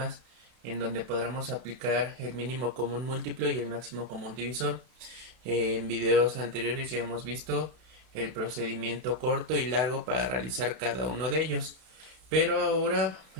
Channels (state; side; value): late; left; 32 ms